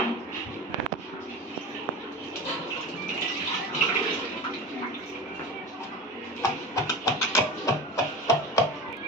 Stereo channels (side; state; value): both; normal; correlation 0.29